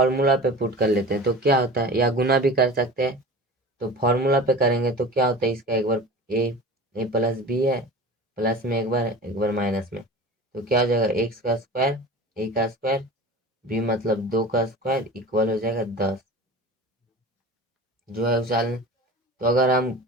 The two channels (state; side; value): normal; both; correlation 0.36